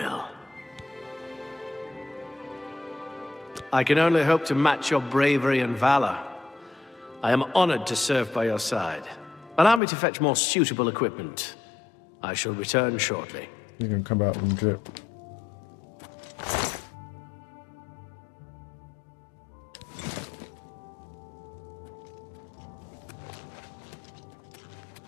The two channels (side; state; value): right; drops out; at 9.8 s